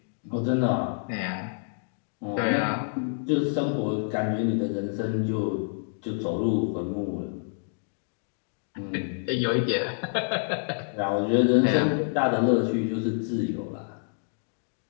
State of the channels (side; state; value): right; silent; digital silence